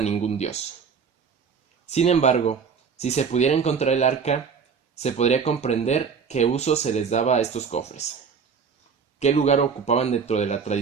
ningún dios. Sin embargo, si se pudiera encontrar el arca, se podría comprender qué uso se les daba a estos cofres, qué lugar ocupaban dentro de la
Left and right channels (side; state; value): left; quieter; 6.1 dB